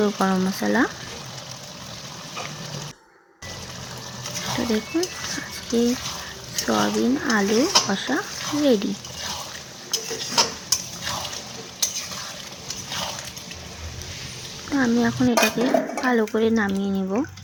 গরম মশলা। তো দেখুন আজকে সয়াবিন আলু কষা রেডি। তো আমি এখন এটাকে ভালো করে নামিয়ে নেব।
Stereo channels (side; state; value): both; identical; correlation 1.00